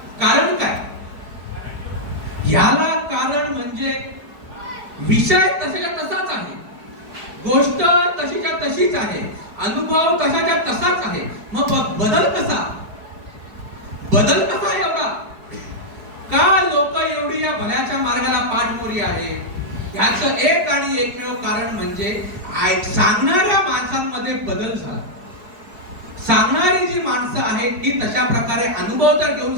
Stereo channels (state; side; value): late; left; 4.7 ms